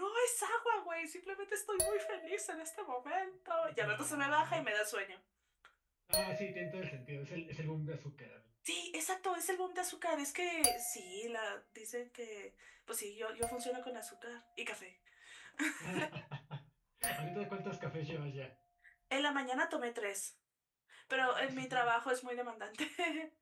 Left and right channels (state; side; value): identical; both; correlation 1.00